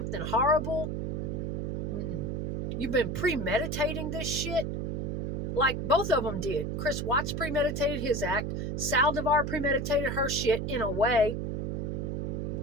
horrible, you've been premeditating this shit, like both of them did. Chris Watts premeditated his act. Saldivar premeditated her shit in a way,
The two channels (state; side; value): noise; right; hum, 2 dB below the sound